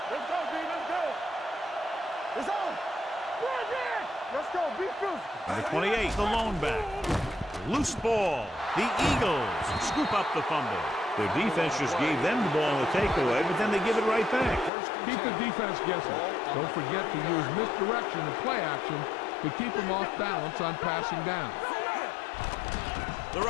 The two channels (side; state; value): right; drops out; at 14.7 s